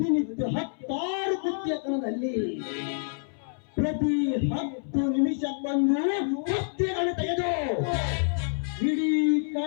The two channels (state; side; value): silent; right; 60 dB below the other